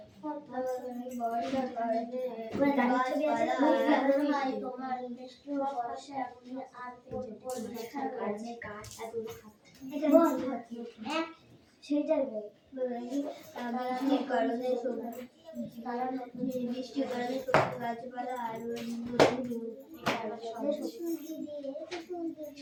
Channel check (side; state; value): both; identical; correlation 1.00